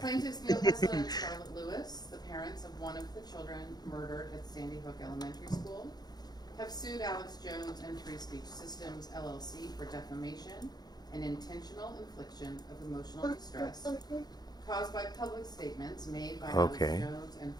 Neil Heslin and Charlotte Lewis, the parents of one of the children murdered at Sandy Hook Elementary School, have sued Alex Jones and Free Speech Systems, LLC for defamation an intentional infliction of emotional distress caused by public statements made by Okay. Alex Jones and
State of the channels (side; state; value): right; late; 0.19 ms